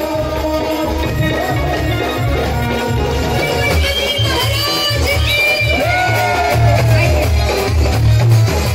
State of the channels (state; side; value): identical; both; correlation 1.00